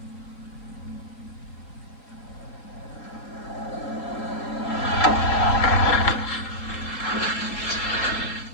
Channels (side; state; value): right; late; 3.8 ms